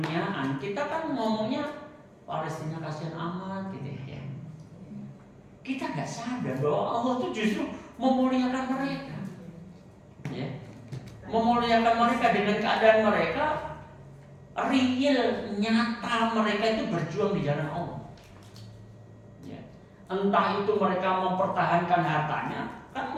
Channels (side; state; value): both; identical; correlation 1.00